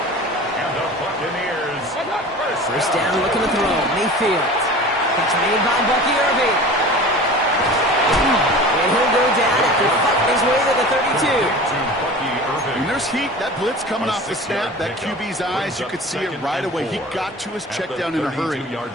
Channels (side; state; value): both; normal; correlation 0.38